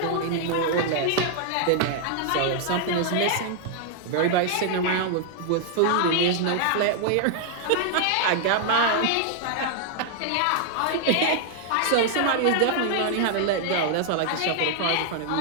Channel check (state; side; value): different; both; correlation 0.00